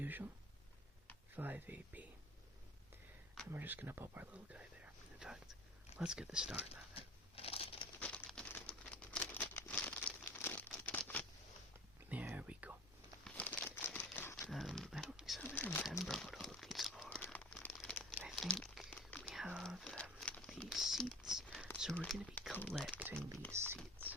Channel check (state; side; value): normal; both; correlation 0.40